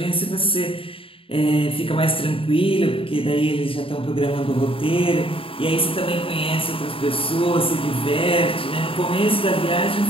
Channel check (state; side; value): late; right; 0.26 ms